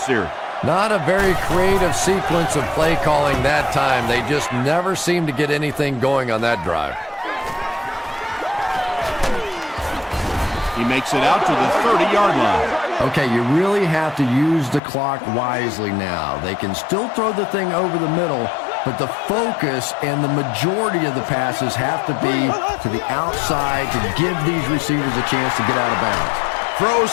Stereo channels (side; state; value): right; drops out; at 14.8 s